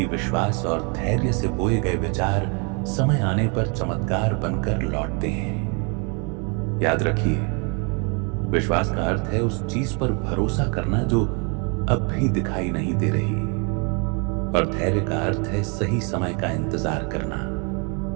विश्वास और धैर्य से बोए गए विचार समय आने पर चमत्कार बनकर लौटते हैं। याद रखिए, विश्वास का अर्थ है उस चीज पर भरोसा करना जो अब भी दिखाई नहीं दे रही, और धैर्य का अर्थ है सही समय का इंतजार करना।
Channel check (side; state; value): left; quieter; 34.6 dB